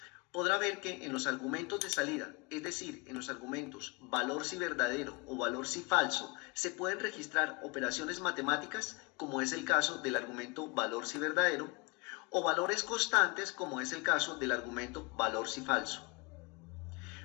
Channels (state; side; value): quieter; right; 29.6 dB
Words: podrá ver que en los argumentos de salida, es decir, en los argumentos valor si verdadero o valor si falso, se pueden registrar operaciones matemáticas, como es el caso del argumento valor si verdadero, o valores constantes, como es el caso del argumento valor si falso.